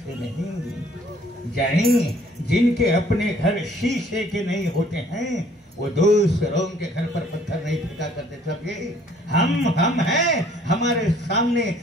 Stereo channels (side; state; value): both; normal; correlation 0.59